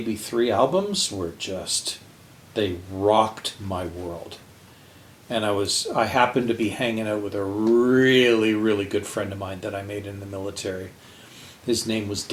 3 albums were just, they rocked my world. And I happened to be hanging out with a really, really good friend of mine that I made in the military. His name was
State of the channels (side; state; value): both; identical; correlation 1.00